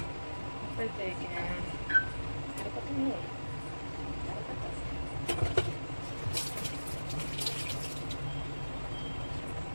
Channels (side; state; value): both; inverted; correlation -1.00